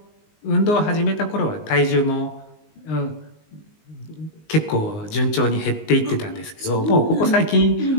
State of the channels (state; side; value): late; right; 19 ms